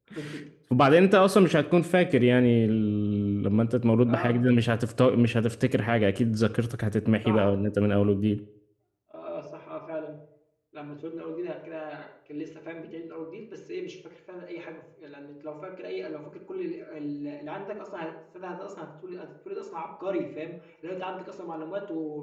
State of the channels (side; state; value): both; identical; correlation 1.00